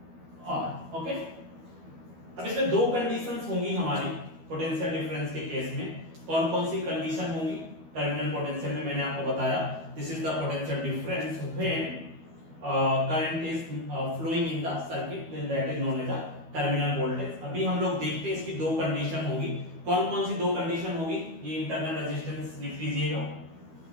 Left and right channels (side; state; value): left; late; 12 ms